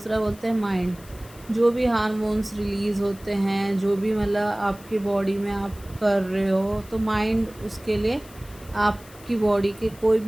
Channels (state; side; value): noise; left; hiss, 22 dB below the sound